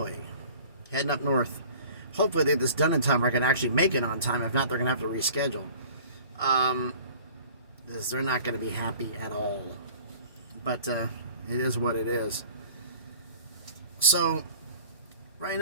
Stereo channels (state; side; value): inverted; both; correlation -0.46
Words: Heading up north. Hopefully they get this done in time where I can actually make it on time. If not, they're going to have to reschedule. Because they're not going to be happy at all. But it is what it is. So, right